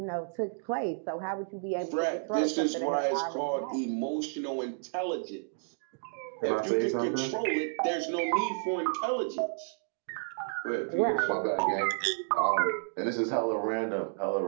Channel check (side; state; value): left; silent; digital silence